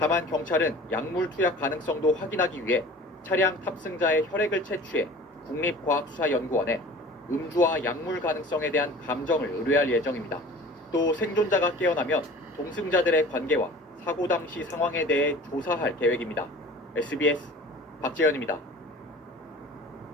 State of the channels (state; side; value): normal; both; correlation 0.43